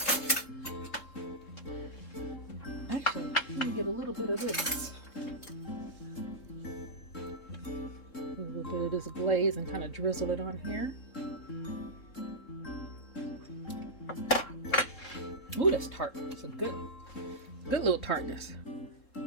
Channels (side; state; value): right; late; 3.7 ms